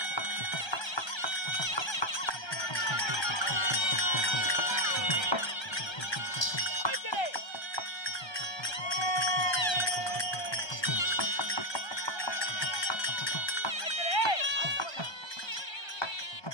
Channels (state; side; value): late; right; 1.3 ms